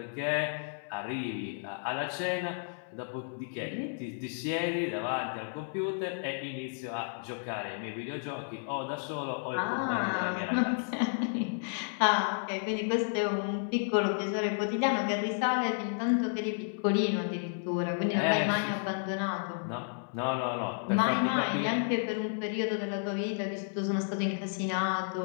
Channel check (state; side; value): silent; right; 56 dB below the other